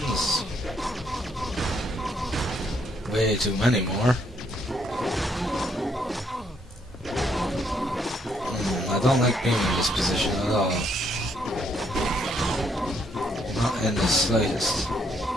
Way too many more. I don't like being in this position at all. Not in the slightest.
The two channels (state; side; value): normal; both; correlation 0.71